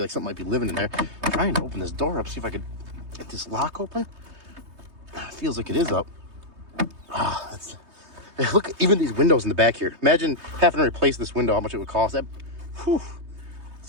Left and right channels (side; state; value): left; late; 3.2 ms